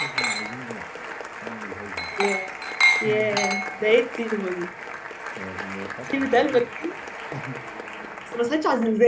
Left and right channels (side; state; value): both; identical; correlation 1.00